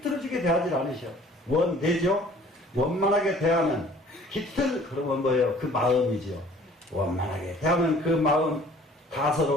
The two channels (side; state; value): both; normal; correlation 0.52